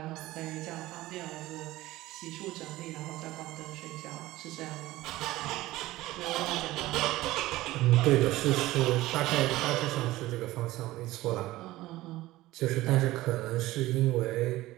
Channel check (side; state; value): left; quieter; 17.3 dB